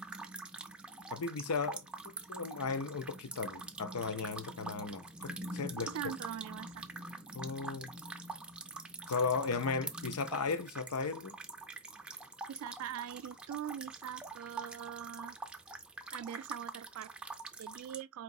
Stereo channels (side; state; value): both; normal; correlation -0.10